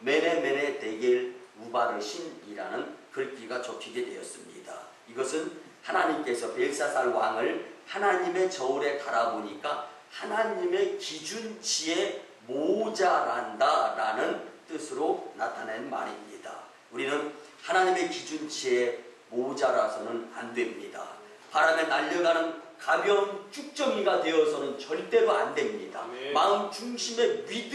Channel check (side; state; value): both; identical; correlation 1.00